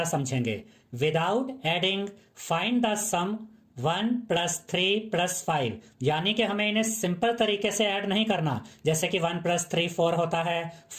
समझेंगे। Without adding find the sum 1 plus 3 plus 5, यानी कि हमें इन्हें सिंपल तरीके से ऐड नहीं करना, जैसे कि 1 प्लस 3 4 होता है,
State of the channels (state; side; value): identical; both; correlation 1.00